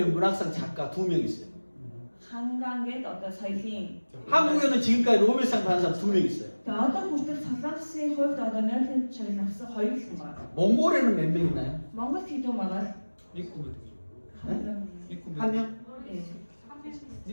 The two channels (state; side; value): inverted; both; correlation -1.00